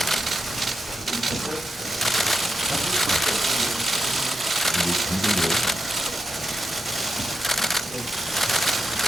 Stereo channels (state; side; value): normal; both; correlation 0.86